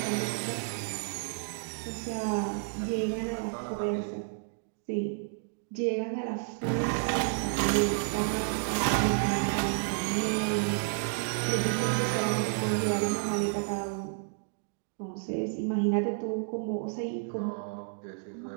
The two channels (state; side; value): silent; left; 57 dB below the other